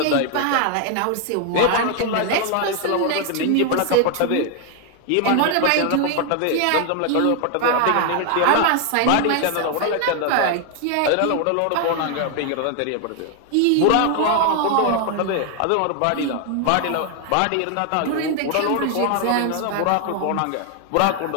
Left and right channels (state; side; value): different; both; correlation 0.01